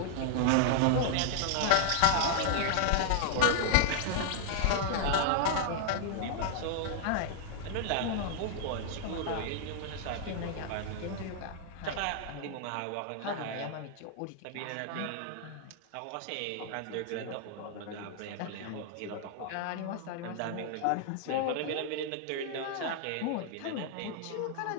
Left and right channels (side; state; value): both; different; correlation 0.00